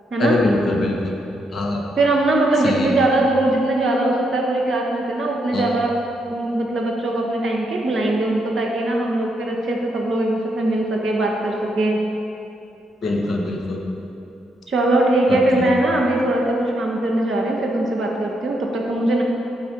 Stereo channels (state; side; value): normal; both; correlation 0.78